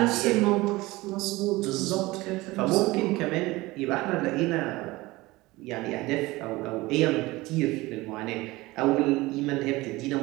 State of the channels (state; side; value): quieter; left; 20.4 dB